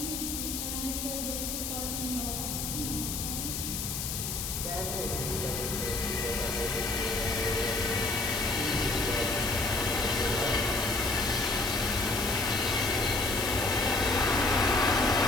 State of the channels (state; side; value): noise; left; hiss, 3 dB below the sound